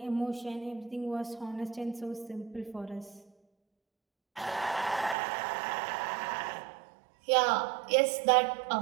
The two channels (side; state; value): left; drops out; at 5.2 s